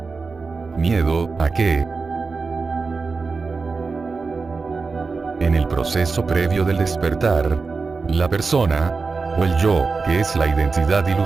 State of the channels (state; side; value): quieter; left; 4.4 dB